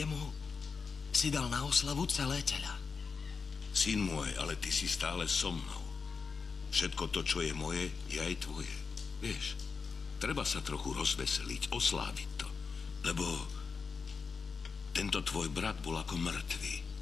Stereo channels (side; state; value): right; quieter; 5.2 dB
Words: si dal na oslavu celé teľa. Syn môj, ale ty si stále so mnou. Všetko to, čo je moje, je aj tvoje. Vieš, treba sa trochu rozveseliť, osláviť to. Lebo tento tvoj brat bol ako mŕtvý